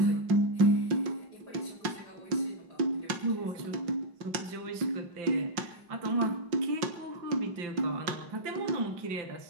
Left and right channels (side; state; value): left; late; 5.5 ms